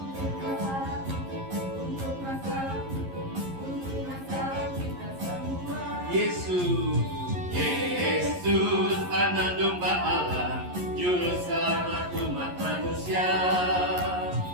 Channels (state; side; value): late; left; 11 ms